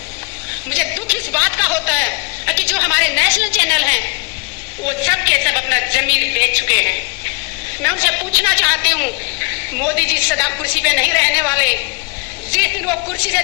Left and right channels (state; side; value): quieter; right; 30.5 dB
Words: मुझे दुख इस बात का होता है कि जो हमारे नेशनल चैनल हैं वो सब के सब अपना जमीर बेच चुके हैं। मैं उनसे पूछना चाहती हूँ, मोदी जी सदा कुर्सी पे नहीं रहने वाले, जिस दिन वो कुर्सी से